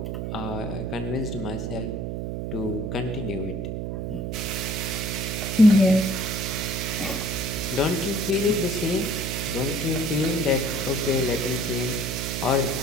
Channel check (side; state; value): right; noise; hum, 3 dB below the sound